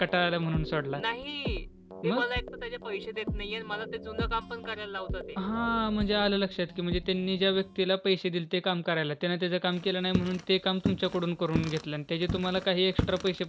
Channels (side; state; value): both; identical; correlation 1.00